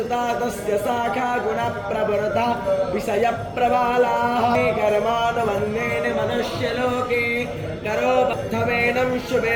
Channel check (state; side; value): identical; both; correlation 1.00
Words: तस्य शाखा गुणप्रवृता विषयप्रबालाः कर्मानुबन्धेन मनुष्यलोके करोबद्धमेनं